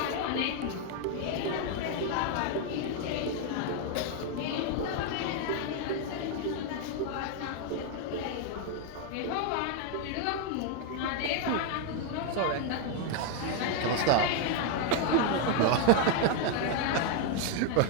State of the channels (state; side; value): different; both; correlation 0.01